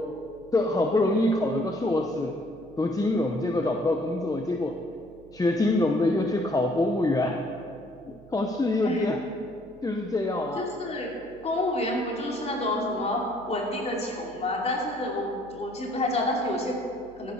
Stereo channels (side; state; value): right; noise; hum, 24 dB below the sound